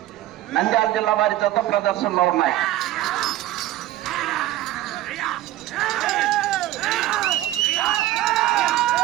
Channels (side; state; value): left; quieter; 14.8 dB